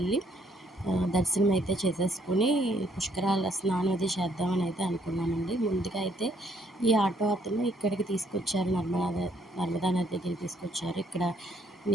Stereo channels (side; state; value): both; normal; correlation 0.68